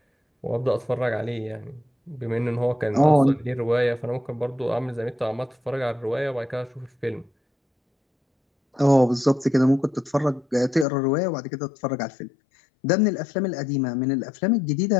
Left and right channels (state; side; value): drops out; right; at 10.9 s